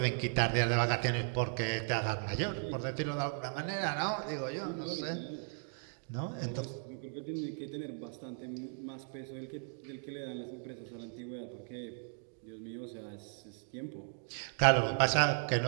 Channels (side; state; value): left; silent; 53 dB below the other